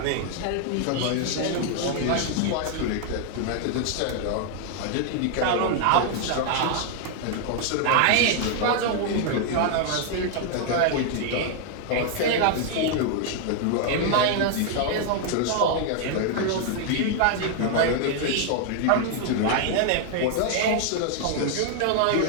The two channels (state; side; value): different; both; correlation 0.00